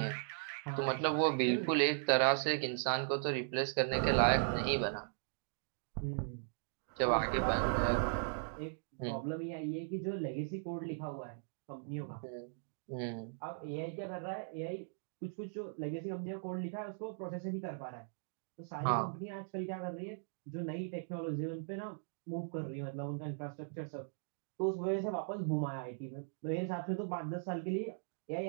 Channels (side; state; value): left; silent; digital silence